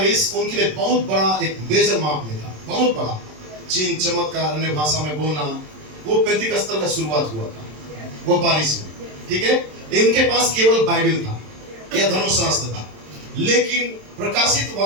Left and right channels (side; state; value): left; late; 27 ms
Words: उनके लिए बहुत बड़ा एक मेजर माप में था, बहुत बड़ा। चिन्ह, चमत्कार, अन्य भाषा में बोलना, वो पेंतिकस्तर का शुरुआत हुआ था वो बारिश में। ठीक है, इनके पास केवल बाइबल था या धर्मशास्त्र था, लेकिन प्रकाशित